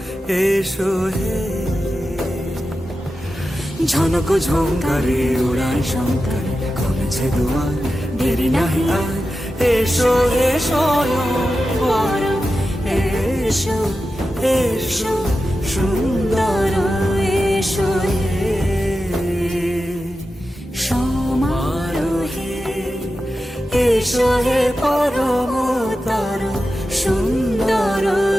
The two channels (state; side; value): normal; both; correlation 0.92